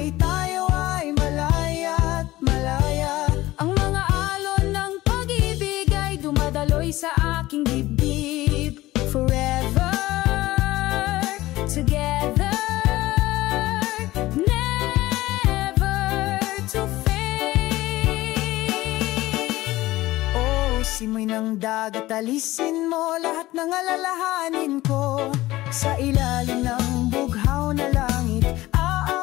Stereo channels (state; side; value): quieter; right; 17.5 dB